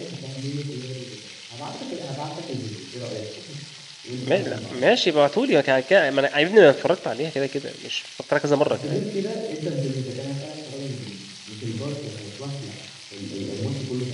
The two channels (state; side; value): identical; both; correlation 1.00